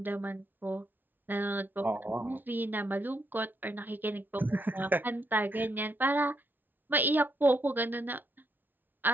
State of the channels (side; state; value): left; late; 0.090 ms